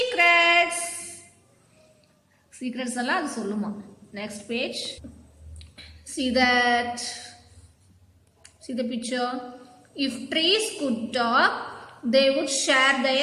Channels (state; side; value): identical; both; correlation 1.00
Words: Secrets alla adu solluma. Next page. See that. See the picture. If trees could talk, they would share